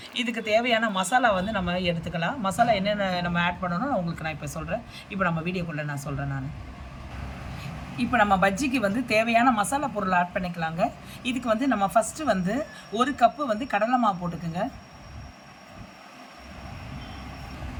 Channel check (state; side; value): identical; both; correlation 1.00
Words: இதுக்கு தேவையான மசாலா நம்ம எடுத்துக்கலாம். மசாலா என்னென்ன நம்ம ஆட் பண்ணணும் உங்களுக்கு நான் இப்போ சொல்கிறேன். இப்போ நம்ம வீடியோக்குள்ளே நான் சொல்கிறேன். இப்போ நம்ம பஜ்ஜிக்கு தேவையான மசாலா பொருள் ஆட் பண்ணிக்கலாங்க. இதுக்கு நம்ம ஃபஸ்ட்டு 1 கப்பு கடலை மாவு போட்டுக்குங்க.